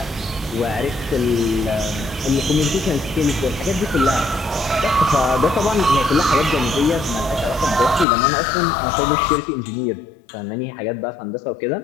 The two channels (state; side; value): drops out; right; at 8.1 s